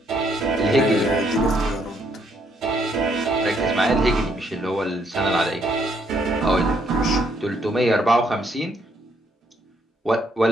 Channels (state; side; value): normal; both; correlation 0.71